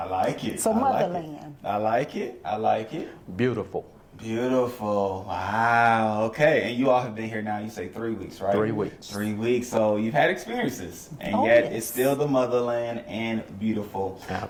like it. So motherland. I like it. I like it. Beautiful. Beautiful. Wow. Okay. And you all have been here now, you say 3 weeks, right? 3 weeks. 3 weeks. So you've had experiences, and yet it's still the motherland and beautiful.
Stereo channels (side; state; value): both; identical; correlation 1.00